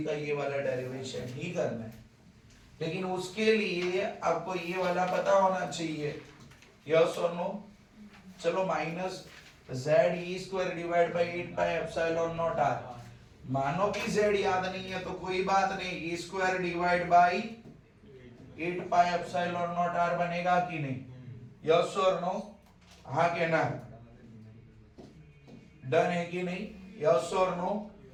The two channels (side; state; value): both; identical; correlation 1.00